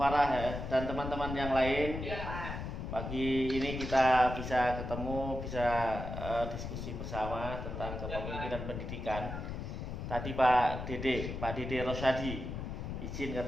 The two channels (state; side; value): noise; left; rumble, 6 dB below the sound